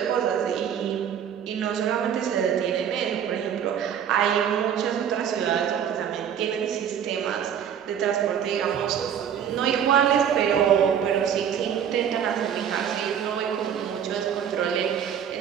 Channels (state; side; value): quieter; left; 8.6 dB